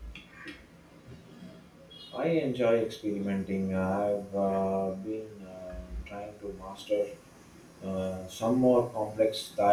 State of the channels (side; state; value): both; identical; correlation 1.00